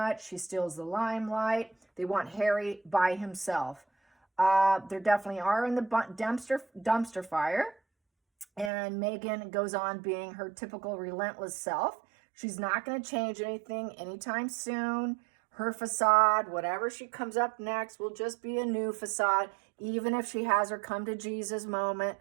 She steals the limelight. They want Harry by himself. There definitely are in the dumpster fire. And Meghan goes on being her typical relentless self. She's not going to change anything anytime soon. Her facade, whatever she comes up next, will just be a new facade. Even if she has her come to Jesus moment,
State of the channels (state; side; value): drops out; left; at 8.7 s